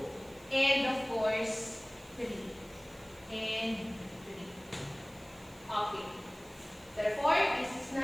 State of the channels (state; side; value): noise; right; hiss, 25 dB below the sound